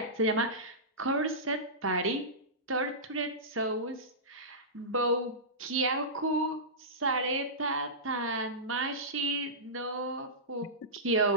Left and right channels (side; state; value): both; normal; correlation -0.18